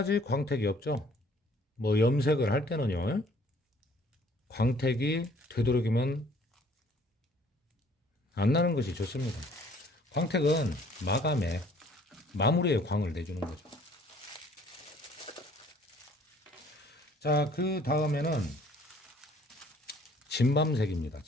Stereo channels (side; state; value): both; normal; correlation 0.57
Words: 광택이 없죠. 뭐 염색을 할 때는요, 광택이 되도록이면 안 나는 것이 좋습니다. 광택은 마무리에 광을 내주는 거죠. 자, 그 다음에는 진밤색입니다.